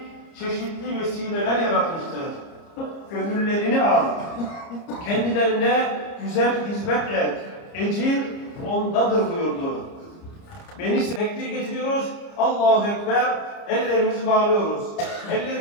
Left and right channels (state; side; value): late; right; 30 ms